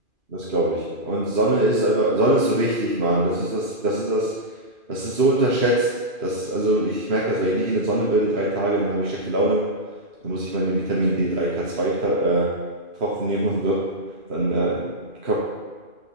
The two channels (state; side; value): late; left; 2.4 ms